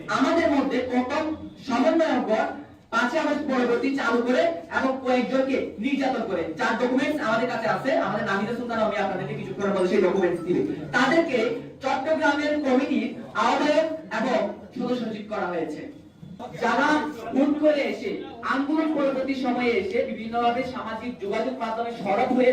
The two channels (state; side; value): identical; both; correlation 1.00